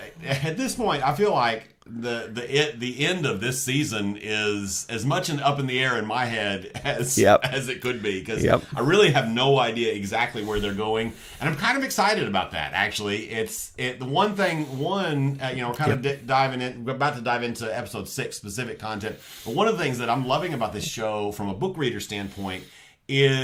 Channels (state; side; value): identical; both; correlation 1.00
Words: at this point, I feel like the end of this season is as much up in the air in my head as it could be, because I really have no idea exactly where they're going, and I'm kind of excited about that. Actually, the one thing we're kind of diving in. We're about to dive into episode 6 specific content, but one of the things that I'm loving about this show from a book reader standpoint